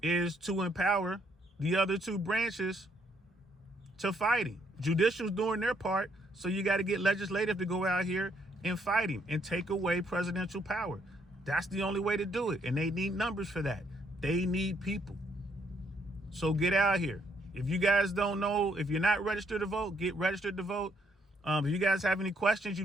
is to empower the other 2 branches to fight him. Judicial's doing their part, so you got to get legislative to go out here and fight him and take away presidential power. That's the only way to do it. And they need numbers for that. They need people. So get out here. If you guys don't know, if you're not registered to vote, get registered to vote. If you guys have any questions,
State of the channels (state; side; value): normal; both; correlation 0.71